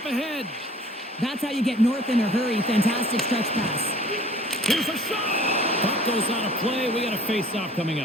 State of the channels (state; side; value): normal; both; correlation 0.50